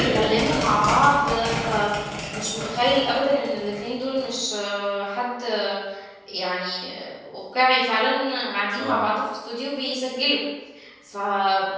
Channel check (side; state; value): both; identical; correlation 1.00